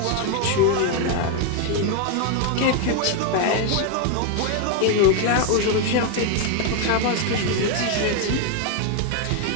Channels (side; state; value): both; different; correlation 0.01